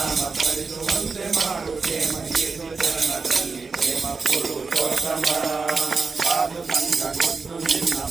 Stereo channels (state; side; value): quieter; left; 4.6 dB